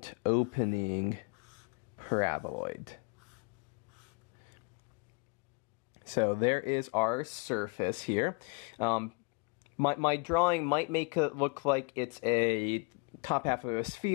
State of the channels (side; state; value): right; quieter; 32.0 dB